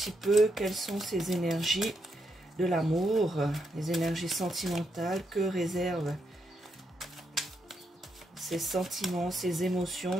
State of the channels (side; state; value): both; normal; correlation 0.80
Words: peu quelles sont ces énergies de l'amour, les énergies sentimentales, que réservent ces sentiments, ces